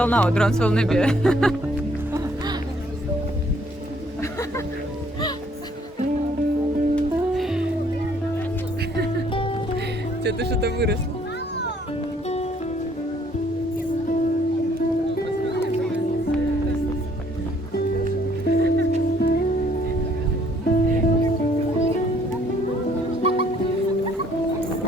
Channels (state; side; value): normal; both; correlation 0.63